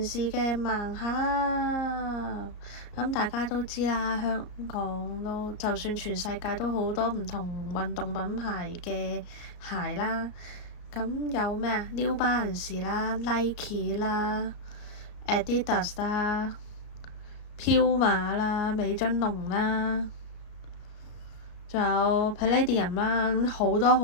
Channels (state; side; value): late; right; 34 ms